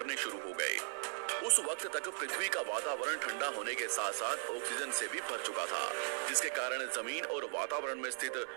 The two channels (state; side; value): silent; left; 53 dB below the other